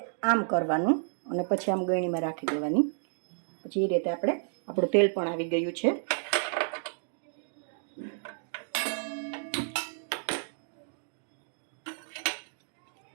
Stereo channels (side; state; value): left; silent; digital silence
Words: આમ કરવાનું અને પછી આમ ગળણીમાં રાખી દેવાની. પછી એ રીતે આપણું તેલ પણ આવી ગયું છે.